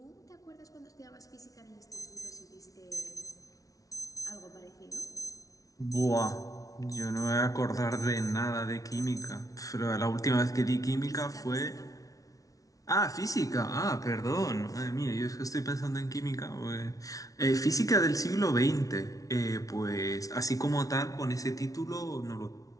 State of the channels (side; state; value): right; late; 0.17 ms